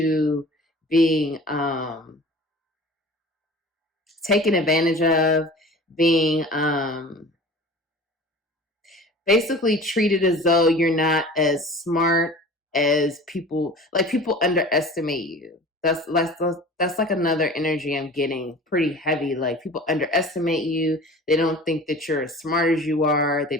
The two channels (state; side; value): normal; both; correlation 0.41